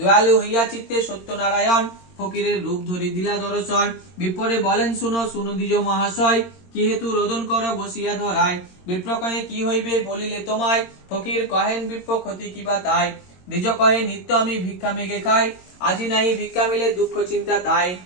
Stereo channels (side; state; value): right; late; 22 ms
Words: হইয়া চিত্তে সত্যনারায়ণ, ফকিরের রূপ ধরি দিলা দর্শন। বিপ্রে বলেন শুনো শুনো দ্বিজ মহাশয়, কি হেতু রোদন কর বসিয়া ধরায়। বিপ্র কহে কি হইবে বলিলে তোমায়, ফকির কহেন বিপ্র ক্ষতি কিবা তাই। দ্বিজ কহে নিত্য আমি ভিক্ষা মেঘে খাই, আজি নাই ভিক্ষা মিলে দুঃখ চিন্তা তাই।